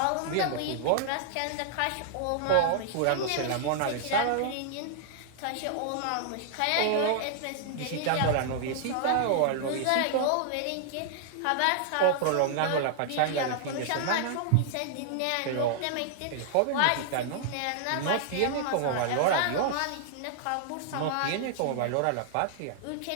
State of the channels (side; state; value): both; different; correlation -0.01